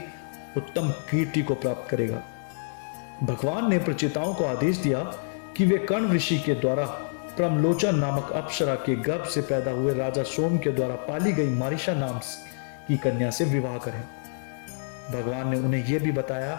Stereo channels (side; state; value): right; silent; 60 dB below the other